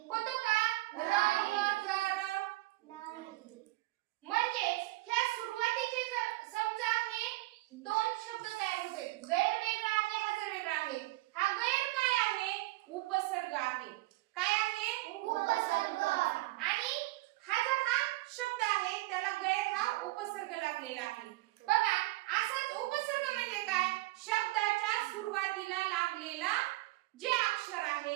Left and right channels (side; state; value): left; quieter; 19.9 dB